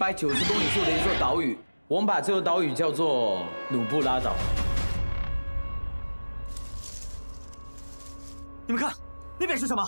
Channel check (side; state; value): both; inverted; correlation -1.00